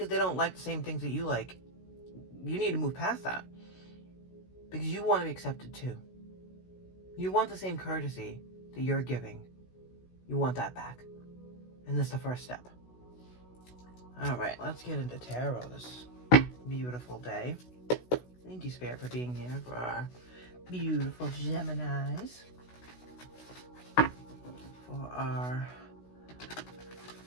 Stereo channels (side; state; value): right; late; 16 ms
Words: they don't like the same things that you like, you need to move past that. Because you want to be accepted too. You want the same courtesy that you're giving. You want that back. And that's the first step. Alright, let's get into tarot this beautiful day. Thank you, Spirit, for being here for our beautiful Geminis. For our